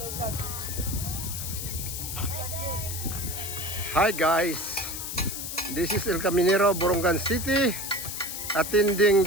Hi guys, this is El Caminero, Borongan City, attending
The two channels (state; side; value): noise; left; hiss, 6 dB below the sound